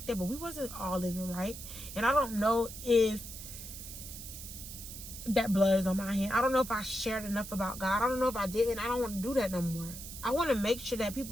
that, but we wasn't all living right. And I don't know if that blood is on my hand. I don't know if I shared enough about God. I don't know if I did, and I don't want to do that no more. I want to make sure that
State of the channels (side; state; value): right; noise; hiss, 11 dB below the sound